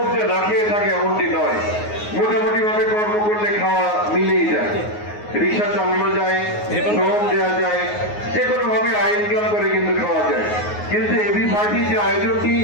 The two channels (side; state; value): right; late; 9.5 ms